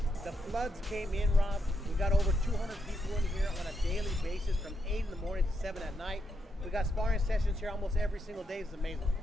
the floods came in, Rob. We got over 200 people in here on a daily basis from 8 in the morning to 7 at night. We got sparring sessions here almost every single day. It's amazing.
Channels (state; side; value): normal; both; correlation 0.80